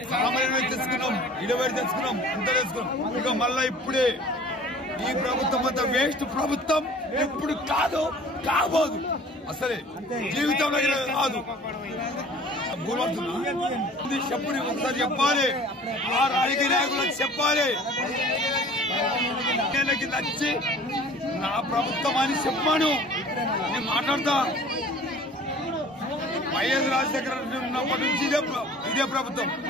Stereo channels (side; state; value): both; normal; correlation 0.47